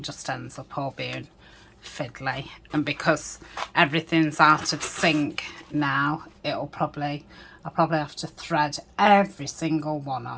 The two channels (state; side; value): identical; both; correlation 1.00